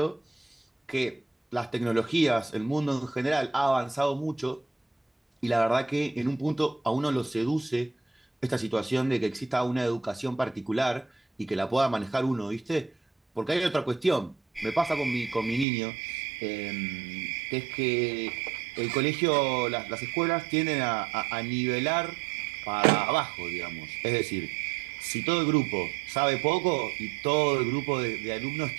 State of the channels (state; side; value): drops out; left; at 15.7 s